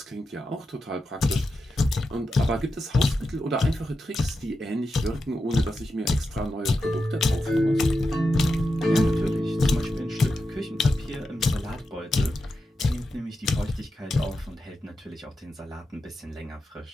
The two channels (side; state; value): both; normal; correlation 0.88